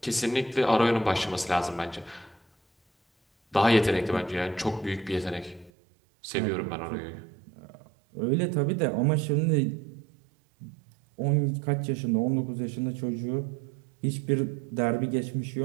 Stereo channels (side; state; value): left; drops out; at 5.7 s